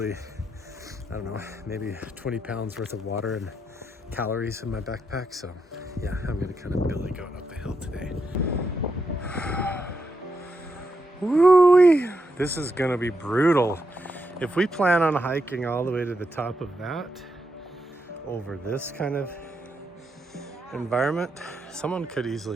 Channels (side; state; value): both; normal; correlation 0.83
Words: I don't know, maybe 20 pounds worth of water and calories in my backpack. So yeah, I'm gonna kind of billy goat up the hill today. Woo-wee! This is gonna be brutal. If we plan on hiking all the way to the top of that, over this kind of environment, someone could